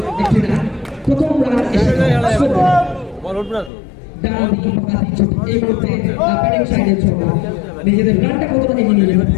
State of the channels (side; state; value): right; drops out; at 3.7 s